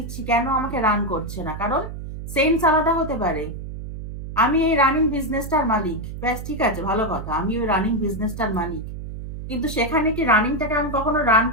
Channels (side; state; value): right; noise; hum, 9 dB below the sound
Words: কেন আমাকে রান করছে না, কারণ সেন্স আলাদা হতে পারে। আমি এই রানিং বিজনেসটার মালিক, ব্যাস ঠিক আছে, ভালো কথা, আমি ওই রানিং বিজনেসটার মালিক, কিন্তু সেখানে কি রানিংটাকে আমি কখনো রান